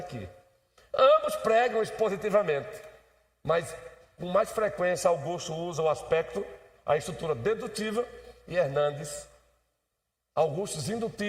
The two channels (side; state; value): both; identical; correlation 1.00